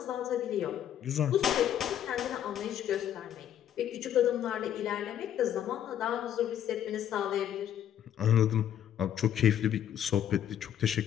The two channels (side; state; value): right; quieter; 10.4 dB